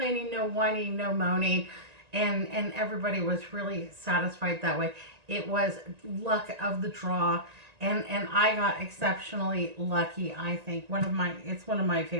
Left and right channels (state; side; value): late; left; 1.9 ms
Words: no whining, no moaning, and everybody was really satisfied that way. It was luck of the draw, and I got exceptionally lucky. I think it's one of my